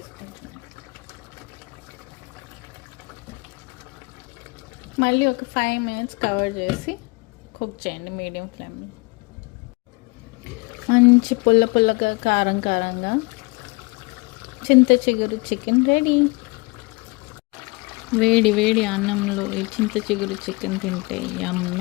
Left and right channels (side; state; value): right; quieter; 26.4 dB